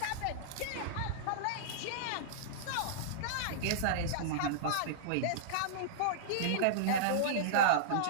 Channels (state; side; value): different; both; correlation -0.03